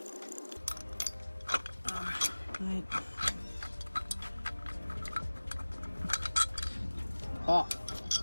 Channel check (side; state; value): both; inverted; correlation -1.00